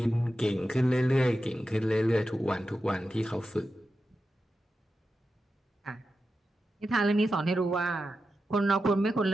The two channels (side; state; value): both; normal; correlation 0.91